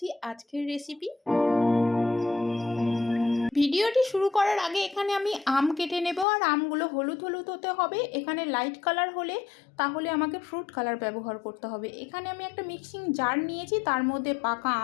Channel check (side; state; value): right; drops out; at 6.2 s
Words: আজকের রেসিপি। ভিডিওটি শুরু করার আগে এখানে আমি আম কেটে নেব, আর আমগুলো হলুদ হলুদ হতে হবে। এখানে লাইট কালার হলে তাহলে আমাকে ফ্রুট কালার ব্যবহার করতে হবে। এখানে আমি একটা মিক্সিং জার নিয়েছি, তার মধ্যে পাকা